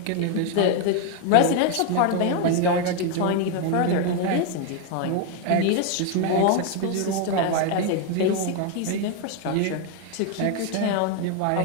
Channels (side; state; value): both; different; correlation 0.01